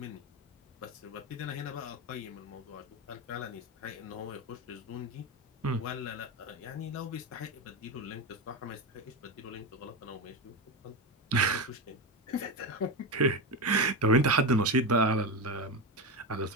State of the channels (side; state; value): both; normal; correlation 0.15